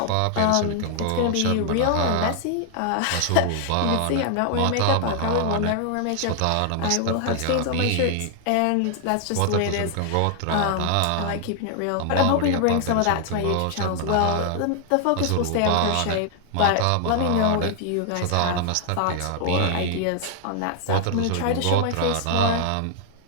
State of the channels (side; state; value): both; different; correlation 0.00